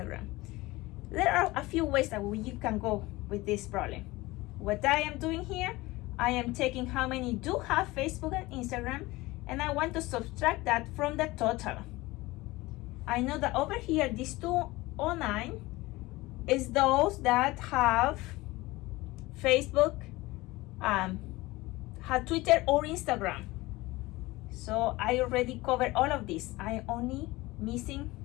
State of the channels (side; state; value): right; quieter; 20.3 dB